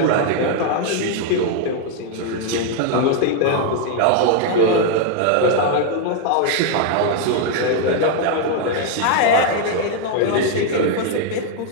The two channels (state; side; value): different; both; correlation 0.00